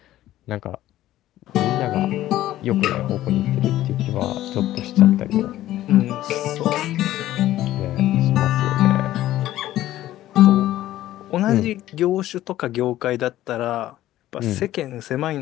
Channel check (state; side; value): quieter; right; 14.2 dB